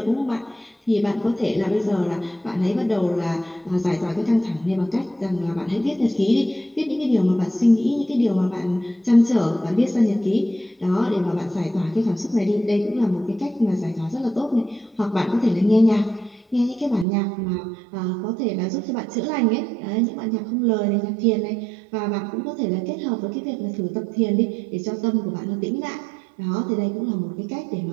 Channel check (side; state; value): left; drops out; at 17.1 s